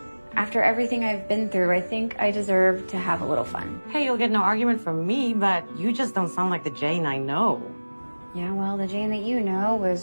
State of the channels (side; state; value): both; inverted; correlation -1.00